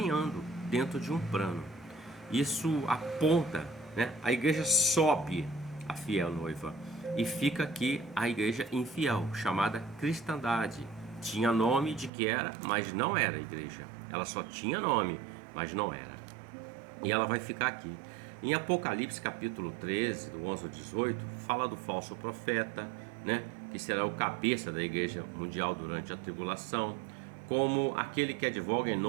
dentro de um plano. Isso aponta, né? A igreja sobe a fiel noiva e fica aqui a igreja infiel, chamada cristandade. Tinha nome de que era, mas não era igreja. Ela só tinha nome, mas não era. E ela vai ficar aqui. Em Apocalipse capítulo 13, do 11 ao 18, fala do falso profeta, né, que será o cabeça da igreja mundial durante a tribulação, como aquele que advoga em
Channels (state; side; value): drops out; left; at 12.1 s